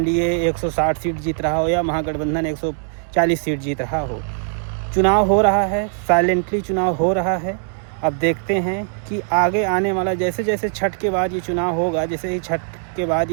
160 सीट जीत रहा हो या महागठबंधन 140 सीट जीत रहा हो। चुनाव हो रहा है, साइलेंटली चुनाव हो रहा है। अब देखते हैं कि आगे आने वाला, जैसे जैसे छठ के बाद ये चुनाव होगा, जैसे ही छठ के बाद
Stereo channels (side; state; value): left; silent; digital silence